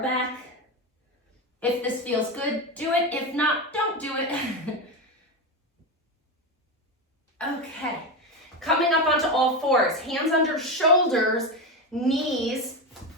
back. If this feels good, do it. If not, don't do it. Okay, coming up onto all fours, hands under shoulders, knees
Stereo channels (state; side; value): normal; both; correlation 0.15